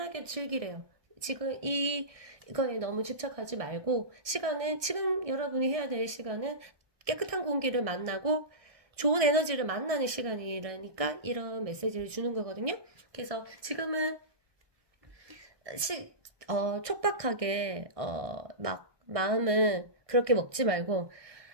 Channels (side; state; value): left; late; 1.6 ms